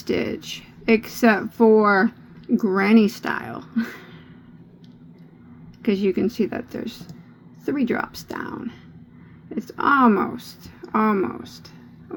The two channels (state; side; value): identical; both; correlation 1.00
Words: except for granny style. Because you can see that there's 3 drops down. It's almost